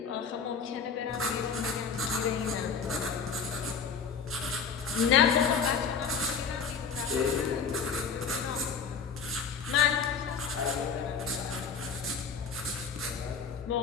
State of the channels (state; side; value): quieter; right; 5.9 dB